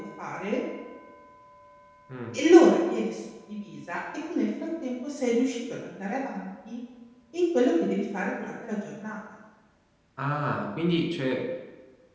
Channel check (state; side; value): identical; both; correlation 1.00